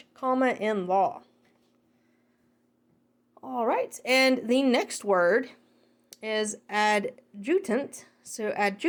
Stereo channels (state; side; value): identical; both; correlation 1.00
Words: in law. All right, and the next word is adjutant. So